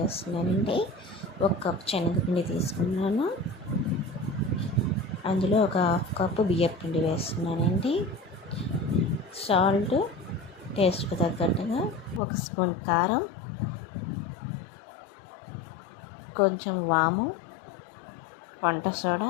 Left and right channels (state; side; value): drops out; right; at 12.2 s